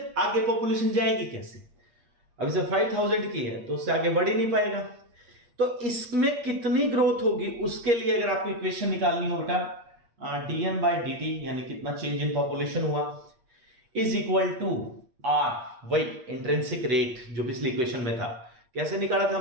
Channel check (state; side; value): late; left; 8.5 ms